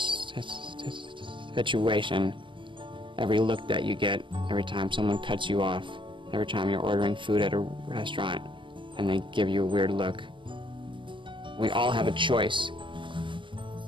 situation, every look that you get, every time someone cuts you off, every time you're ordering food at a restaurant and they give you a weird look. We all have a choice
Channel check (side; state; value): left; late; 0.24 ms